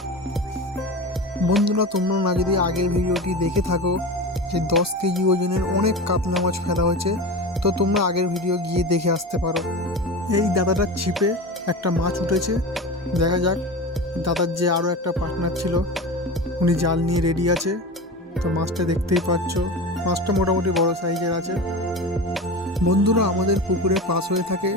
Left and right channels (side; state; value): both; normal; correlation 0.28